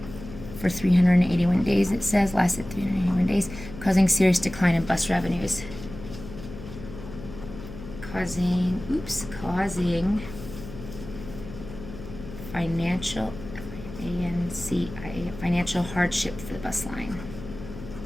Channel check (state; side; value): noise; left; hum, 13 dB below the sound